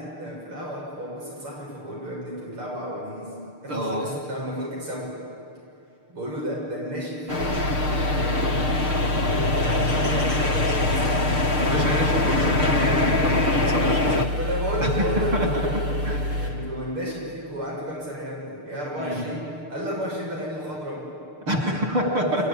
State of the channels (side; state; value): left; late; 6.7 ms